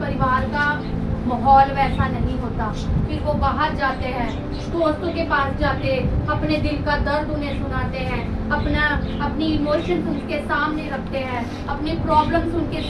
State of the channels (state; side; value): identical; both; correlation 1.00